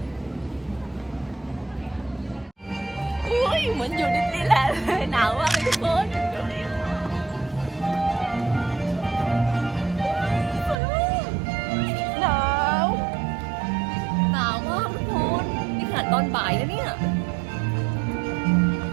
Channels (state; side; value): drops out; left; at 10.8 s